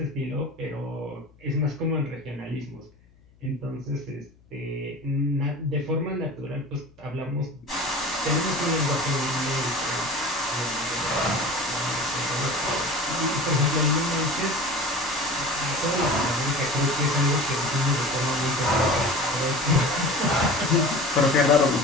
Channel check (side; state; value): left; noise; hum, 29 dB below the sound